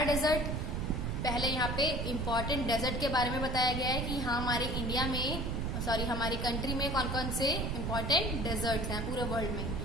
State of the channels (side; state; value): right; noise; rumble, 1 dB below the sound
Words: desert. पहले यहाँ पे इम्पोर्टेंट डेजर्ट के बारे में बताया गया है कि हाँ हमारे इंडिया में, हमारी कंट्री में कौन कौन से इम्पोर्टेंट डेजर्ट हैं पूरे वर्ल्ड में।